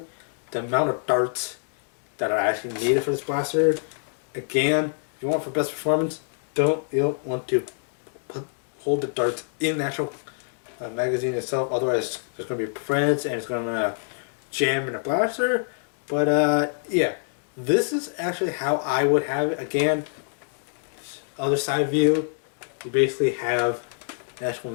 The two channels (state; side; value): silent; right; digital silence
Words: the amount of darts that are actually needed for this blaster. Again, if you want for best performance, you don't want to hold the darts in the actual magazine itself. Otherwise, there's going to be prints and it's going to jam in the blaster. But yeah, this is actually how I would have it. Again, other side view, you basically have the actual